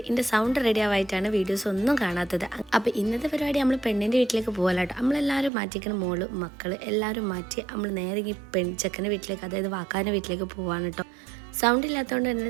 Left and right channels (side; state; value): left; drops out; at 5.5 s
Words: എൻ്റെ സൗണ്ട് റെഡി ആവായിട്ടാണ് വീഡിയോസ് ഒന്നും കാണാത്തത്. അപ്പോൾ ഇന്നത്തെ പരിപാടി നമ്മൾ പെണ്ണിൻ്റെ വീട്ടിലേക്ക് പോകാനാട്ടോ. നമ്മളെല്ലാവരും മാറ്റിക്കുന്ന മോള് മക്കൾ എല്ലാവരും മാറ്റി നമ്മൾ നേരെ ഈ ചെക്കൻ്റെ വീട്ടിലേക്ക്, അതായത് വാക്കാൻ്റെ വീട്ടിലേക്ക് പോകാൻ കേട്ടോ. സൗണ്ട് ഇല്ലാത്തതുകൊണ്ട് തന്നെ